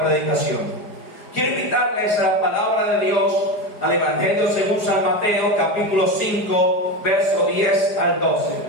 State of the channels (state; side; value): late; right; 4.9 ms